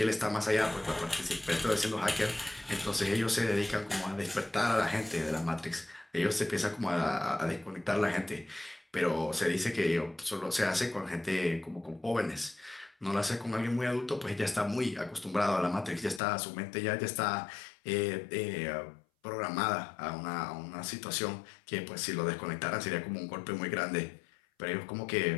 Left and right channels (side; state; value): right; drops out; at 16.2 s